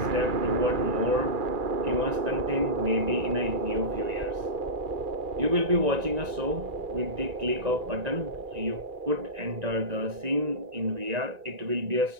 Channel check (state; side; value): late; left; 1.9 ms